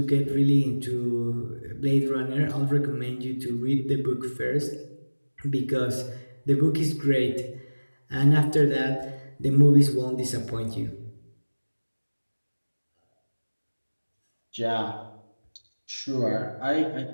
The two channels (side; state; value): both; inverted; correlation -1.00